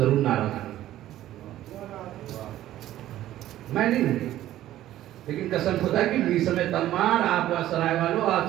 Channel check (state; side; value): quieter; left; 13.6 dB